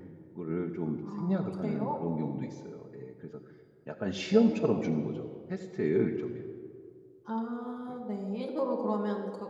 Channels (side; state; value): both; identical; correlation 1.00